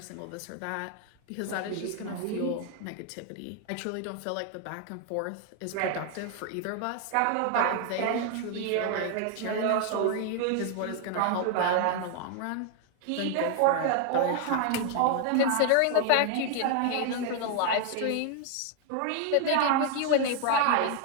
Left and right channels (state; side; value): different; both; correlation 0.00